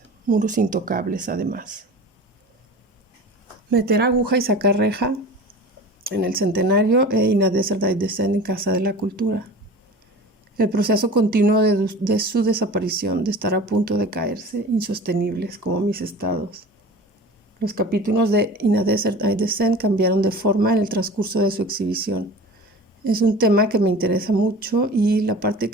muros intocables además. Meter aguja y sacar reja en el centenario e In a Desert I Descend en Casa de la Cultura. El proceso continuo de su desaparición, de estar a punto de caerse, insostenibles como mis estados. Los capítulos de In a Desert I Descend cambiaron de forma en el transcurso de su exhibición. Es un tema que me interesa mucho y la parte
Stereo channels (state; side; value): normal; both; correlation 0.38